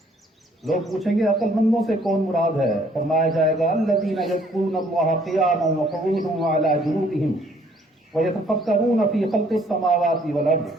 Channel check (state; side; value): normal; both; correlation 0.62